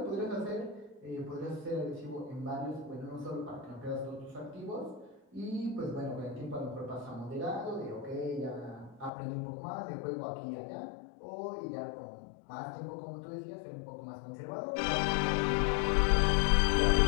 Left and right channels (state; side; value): drops out; right; at 9.1 s